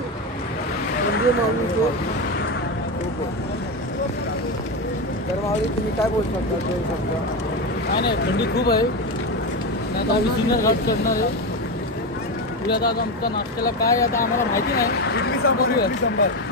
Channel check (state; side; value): normal; both; correlation 0.15